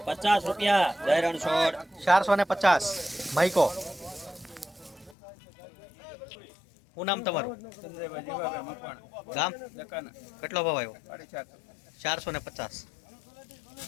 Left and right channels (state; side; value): drops out; right; at 5.2 s